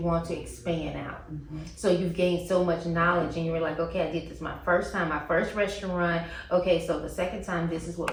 to expand out. So you've gained so much knowledge and you were like, okay, I did this my first time, my first restaurant. Okay, so the second time, this is what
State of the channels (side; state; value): both; identical; correlation 1.00